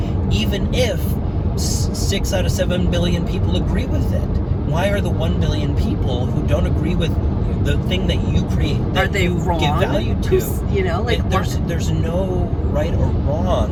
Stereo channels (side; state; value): both; identical; correlation 1.00